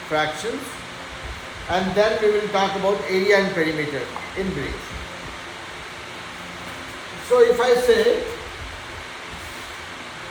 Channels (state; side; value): identical; both; correlation 1.00